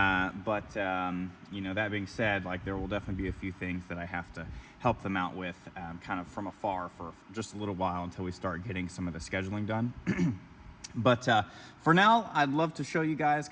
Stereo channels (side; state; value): both; identical; correlation 1.00